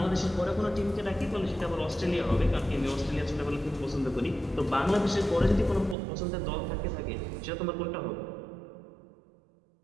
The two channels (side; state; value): left; drops out; at 6.0 s